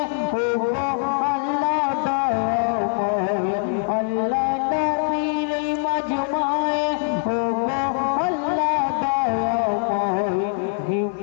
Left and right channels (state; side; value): silent; right; 60 dB below the other